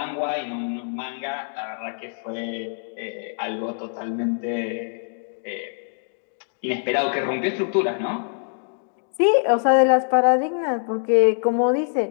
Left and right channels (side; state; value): right; silent; digital silence